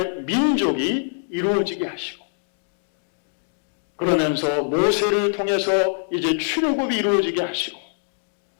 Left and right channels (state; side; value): silent; right; digital silence